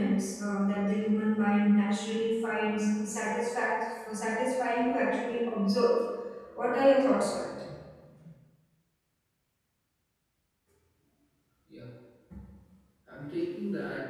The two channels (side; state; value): both; identical; correlation 1.00